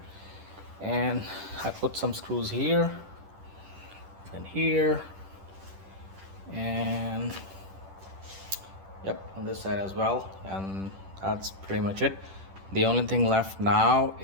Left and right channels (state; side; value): late; left; 10 ms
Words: and I put some screws here and here, and yep, on this side as well. And that's pretty much it. The only thing left now